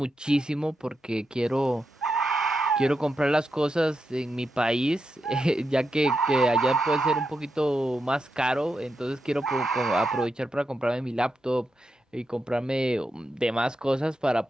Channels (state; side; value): normal; both; correlation 0.86